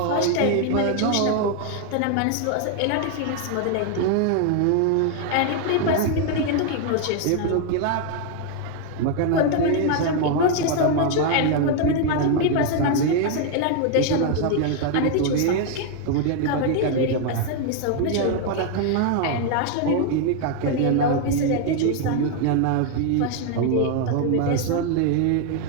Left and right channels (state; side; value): different; both; correlation 0.00